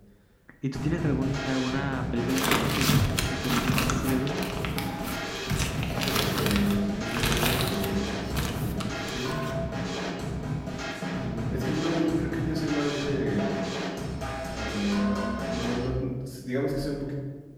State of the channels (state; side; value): identical; both; correlation 1.00